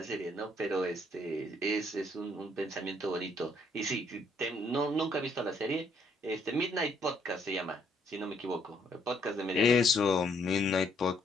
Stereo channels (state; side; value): normal; both; correlation 0.68